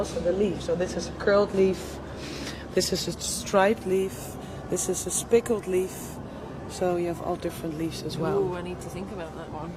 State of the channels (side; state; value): both; identical; correlation 1.00